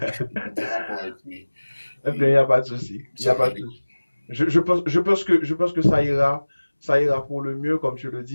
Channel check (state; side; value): inverted; both; correlation -1.00